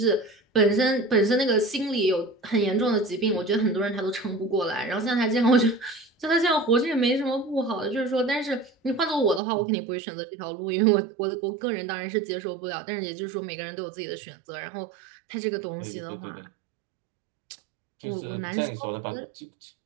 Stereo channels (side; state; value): left; drops out; at 9.4 s